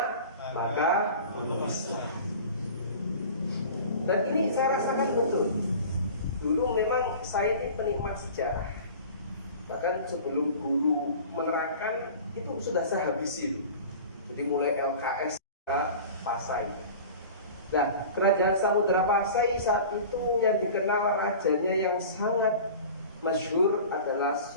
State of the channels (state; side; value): inverted; both; correlation -0.39